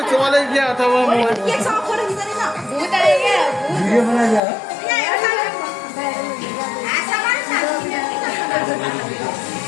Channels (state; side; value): drops out; right; at 4.4 s